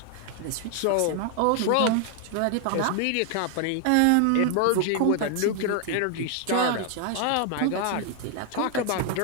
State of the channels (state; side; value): different; both; correlation 0.00